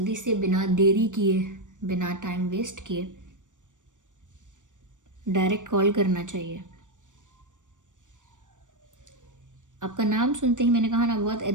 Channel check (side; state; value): left; late; 0.87 ms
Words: से बिना देरी किए, बिना टाइम वेस्ट किए डायरेक्ट कॉल करना चाहिए। आपका नाम सुनते ही मैंने कहा ना, बहुत